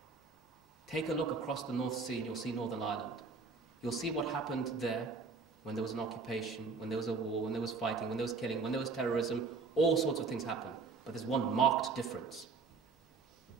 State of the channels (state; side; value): quieter; left; 4.5 dB